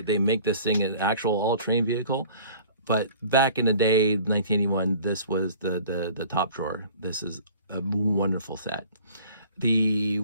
make this thing an actual all-terrain vehicle. But back in the day, 1981, this was the top drawer. This is a wonderful set. The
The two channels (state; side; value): inverted; both; correlation -0.48